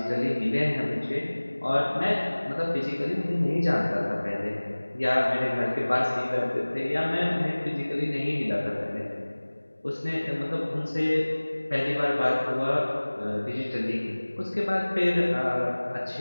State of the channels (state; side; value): inverted; both; correlation -1.00